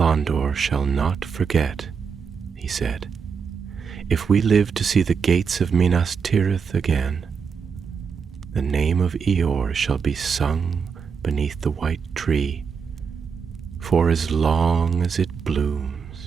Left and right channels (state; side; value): quieter; left; 6.1 dB